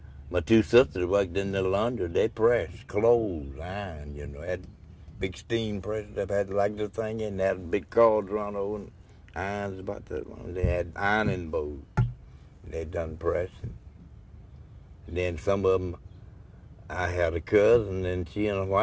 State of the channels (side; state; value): both; identical; correlation 1.00